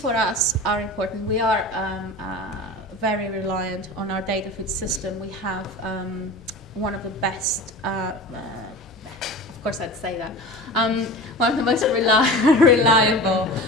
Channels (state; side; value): normal; both; correlation 0.34